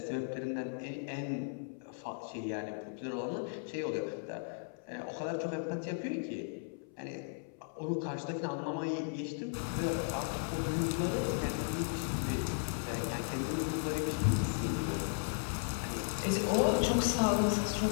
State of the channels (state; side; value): silent; right; 54 dB below the other